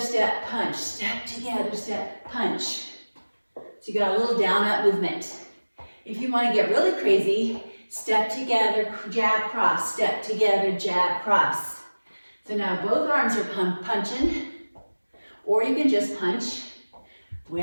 punch, step together, step, punch. So you got a little down up movement. If you want to get really crazy, step together, jab, cross, step together, jab, cross. So now both arms are punching, or you can just punch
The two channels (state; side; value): inverted; both; correlation -1.00